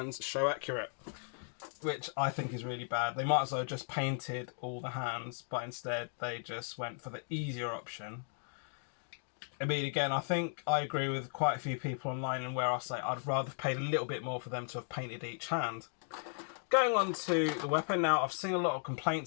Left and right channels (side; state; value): right; silent; digital silence